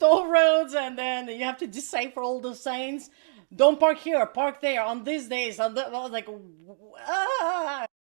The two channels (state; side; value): silent; left; digital silence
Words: roads, and then you have to decipher all the signs. Don't park here, park there, on these days. I was like, ah.